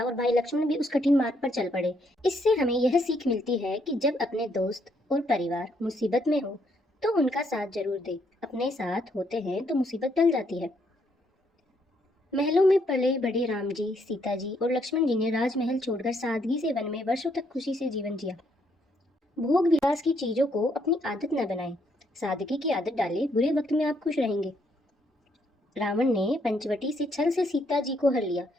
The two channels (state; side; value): normal; both; correlation 0.72